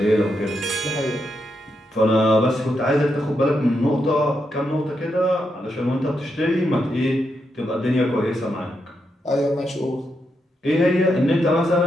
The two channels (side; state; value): both; normal; correlation 0.83